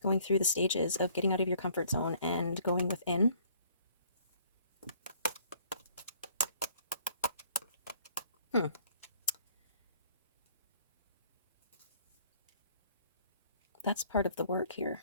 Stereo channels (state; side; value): inverted; both; correlation -0.59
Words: Going through the stages of getting out of your comfort zone and going within. That's part of the work